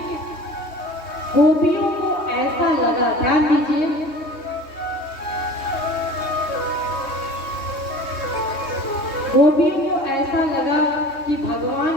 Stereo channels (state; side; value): late; right; 3.2 ms